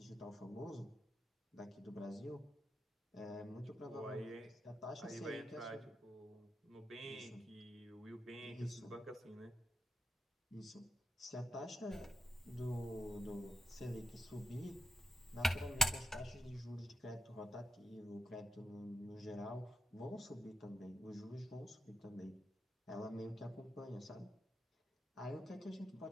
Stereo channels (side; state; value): both; normal; correlation 0.83